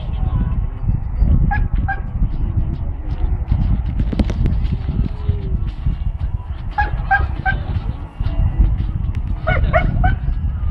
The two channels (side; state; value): both; identical; correlation 1.00